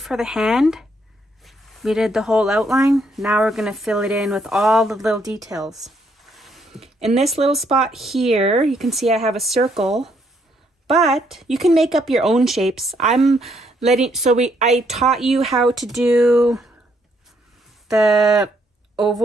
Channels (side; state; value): both; normal; correlation 0.72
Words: the hand, we did the whole outline. Now we're going to fill it in with all the little details. In this little spot here, you can see I have a circle, but you can make up your own shapes. I taught you how to do the